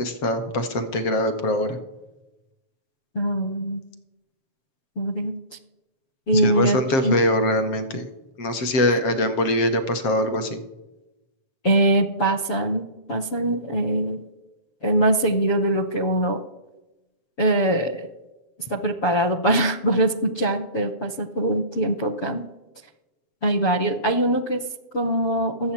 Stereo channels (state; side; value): late; right; 7.1 ms